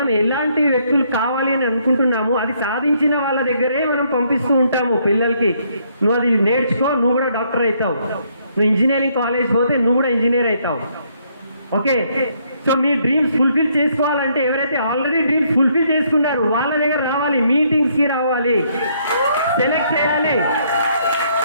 ఎలాంటి వ్యక్తులు కావాలి అని అనుకుంటున్నాము అది సాధించిన వాళ్ళ దగ్గరే మనం పంపిస్తూ ఉంటాము పిల్లలకి. నువ్వు అది నేర్చుకో, నువ్వు కూడా డాక్టర్ అవుతావు. నువ్వు ఇంజనీరింగ్ కాలేజ్ పోతే నువ్వు కూడా ఇంజనీర్ అవుతావు. ఓకే. సో మీ డ్రీమ్స్ ఫుల్ఫిల్ చేసుకోవాలంటే ఎవరైతే ఆల్రెడీ డ్రీమ్స్ ఫుల్ఫిల్ చేసుకున్నారు వాళ్ళ దగ్గర రావాలి, మీటింగ్స్కి రావాలి, సెలెక్ట్ చేయాలి.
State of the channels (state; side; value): inverted; both; correlation -0.70